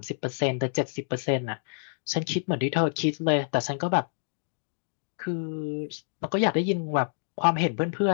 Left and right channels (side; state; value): right; silent; digital silence